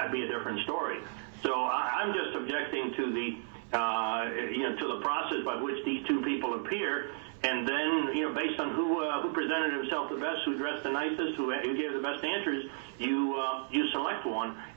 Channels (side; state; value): left; silent; 56 dB below the other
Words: be a different story. So I'm just objecting to the to the process by which these two people appear, and then based on who presented himself the best, who dressed the nicest, who gave the best answers, you select one,